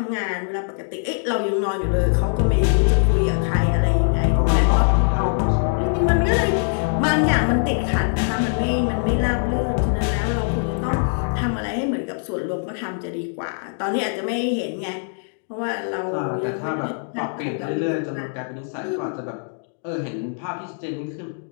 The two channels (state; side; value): silent; right; digital silence